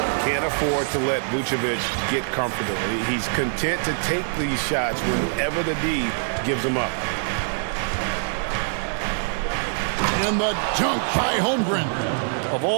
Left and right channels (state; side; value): silent; left; 63 dB below the other